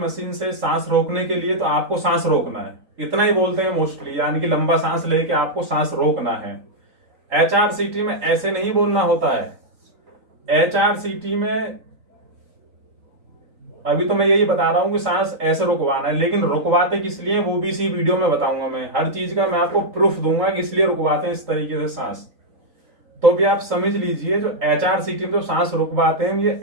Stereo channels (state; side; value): late; left; 3.9 ms